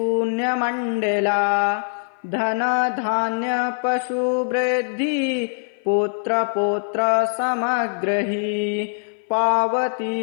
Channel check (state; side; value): silent; right; 58 dB below the other